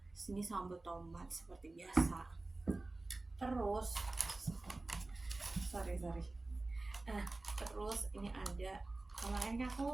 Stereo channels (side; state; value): left; quieter; 3.1 dB